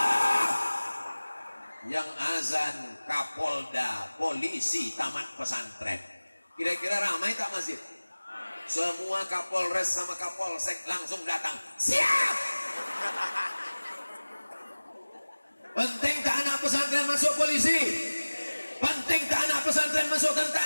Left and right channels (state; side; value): inverted; both; correlation -1.00